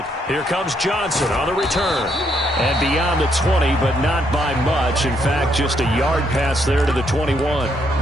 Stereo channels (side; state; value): both; normal; correlation 0.74